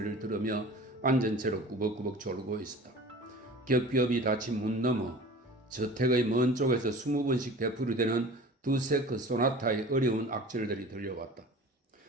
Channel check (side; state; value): both; normal; correlation 0.40